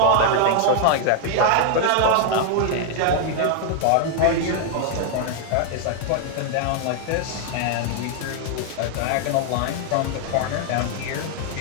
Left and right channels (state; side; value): different; both; correlation 0.00